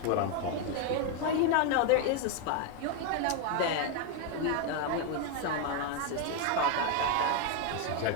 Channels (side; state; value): both; different; correlation 0.01